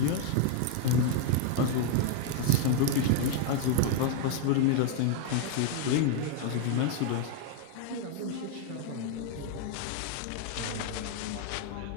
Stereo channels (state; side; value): different; both; correlation 0.00